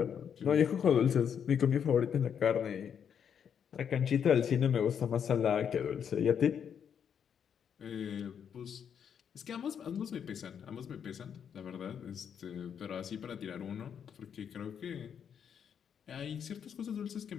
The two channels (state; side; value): quieter; right; 7.9 dB